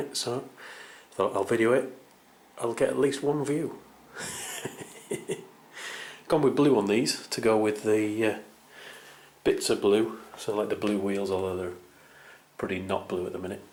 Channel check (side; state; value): both; identical; correlation 1.00